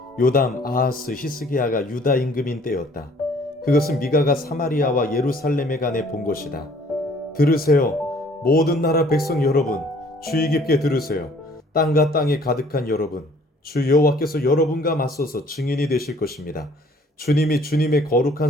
요담, 아하스, 히스기야가 유다 임금인 때였다. 그것은 미가가 사마리아와 예루살렘에 관해 본 것이다. 들으세요, 모든 나라 백성 여러분, 주의 깊게 들으세요. 땅과 땅에 가득한 여러분, 주 여호와께서 여러분과 맞서서 증인이 되실 것입니다. 주님이 주님의 거룩한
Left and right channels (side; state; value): both; normal; correlation 0.57